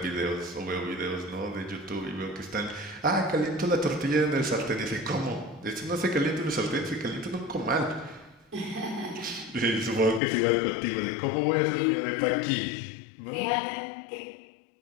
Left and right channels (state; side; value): drops out; right; at 10.2 s